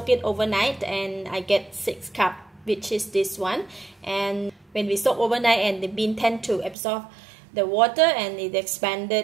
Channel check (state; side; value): drops out; left; at 6.8 s